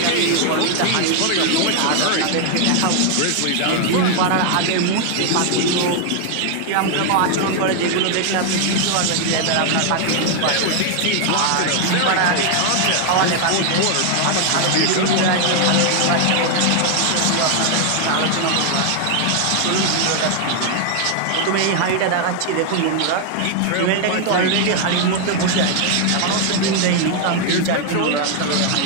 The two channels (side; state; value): both; different; correlation 0.00